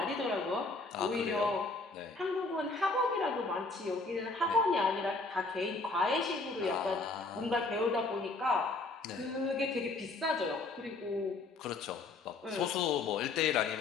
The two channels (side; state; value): right; quieter; 3.5 dB